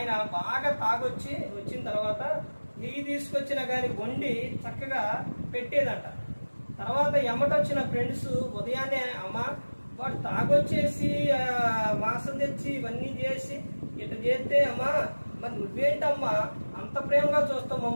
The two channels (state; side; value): inverted; both; correlation -1.00